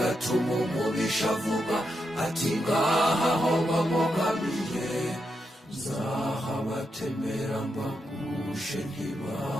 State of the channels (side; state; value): both; normal; correlation 0.84